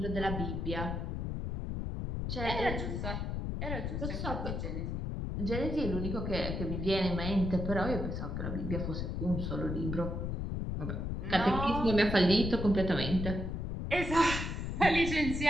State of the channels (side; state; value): left; noise; rumble, 3 dB below the sound